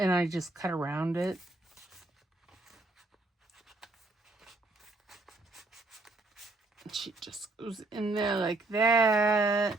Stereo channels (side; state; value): left; quieter; 3.0 dB